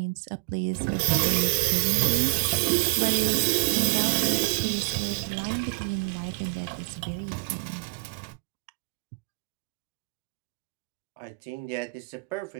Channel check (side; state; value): left; quieter; 30.3 dB